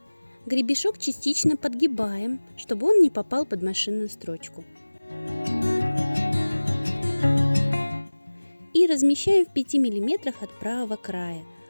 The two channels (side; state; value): both; inverted; correlation -1.00